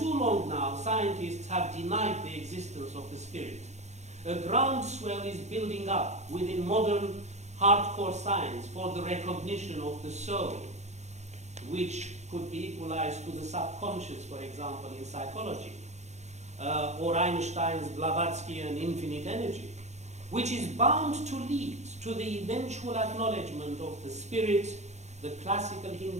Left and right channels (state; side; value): late; left; 0.33 ms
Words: long now, scientists have denied the existence of the spirit. A groundswell is building up within modern hardcore science for the recognition of the soul, which could be equalized to the subconscious, for example, in psychology, or Einstein's Blavatskyan infinite energy, which is bound to lead to the eventual acknowledgement of the spirit, the classical